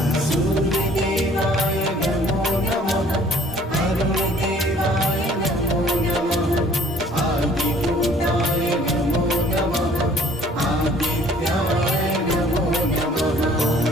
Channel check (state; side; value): normal; both; correlation 0.56